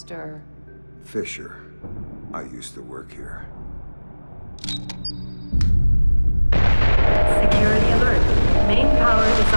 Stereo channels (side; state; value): both; inverted; correlation -1.00